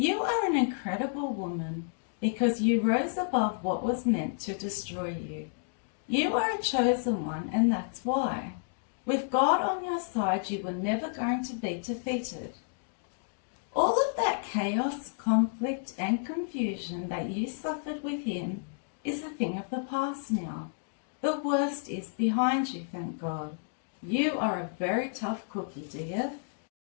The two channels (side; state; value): right; silent; digital silence